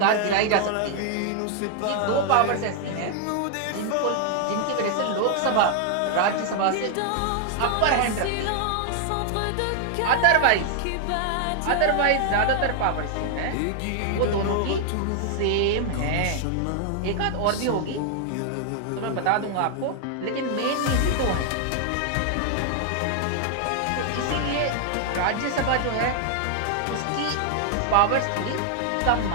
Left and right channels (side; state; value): both; different; correlation 0.00